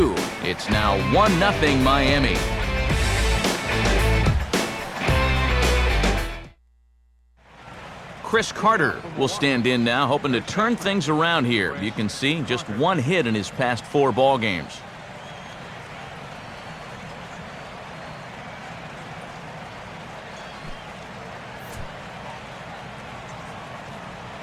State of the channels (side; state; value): both; identical; correlation 1.00